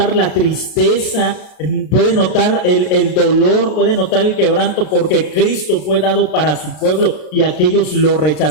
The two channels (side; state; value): right; late; 33 ms